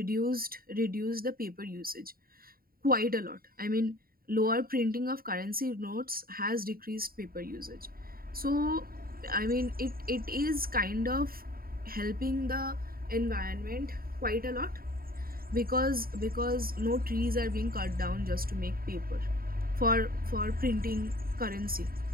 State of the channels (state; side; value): late; left; 0.43 ms